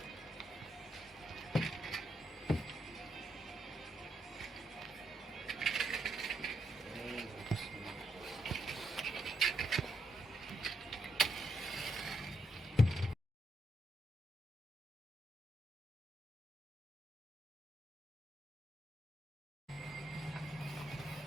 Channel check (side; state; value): both; normal; correlation 0.79